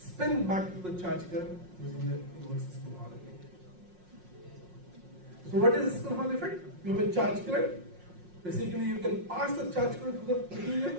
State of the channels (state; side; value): late; left; 5.5 ms